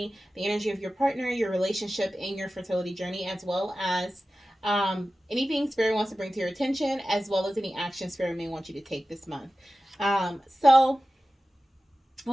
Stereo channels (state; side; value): normal; both; correlation 0.95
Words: the energy of your partner, your relationship, and your fertility journey, as well as anything Spirit wants to bring to your attention, as well as any action Spirit may want you to take this month. And